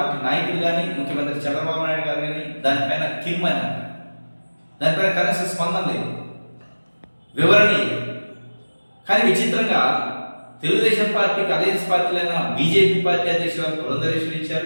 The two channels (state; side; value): inverted; both; correlation -1.00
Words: నాయకులు కానీ, ముఖ్యమంత్రి చంద్రబాబు నాయుడు గారు కానీ దానిపైన కిమ్మని అన్నారు. దానిపైన కనీసం స్పందన లేదు, వివరణ లేదు. కానీ విచిత్రంగా తెలుగుదేశం పార్టీకి అలయన్స్ పార్టీలైన బీజేపీ పార్టీ అధ్యక్షులు పురంధరేశ్వరి